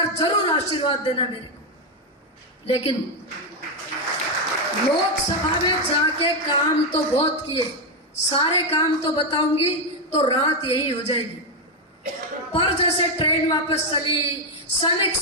जरूर आशीर्वाद देना मेरे को। लेकिन लोकसभा में जाके काम तो बहुत किए, सारे काम तो बताऊंगी तो रात यही हो जाएगी। पर जैसे ट्रेन वापस चली, सैनिक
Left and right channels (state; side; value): normal; both; correlation 0.04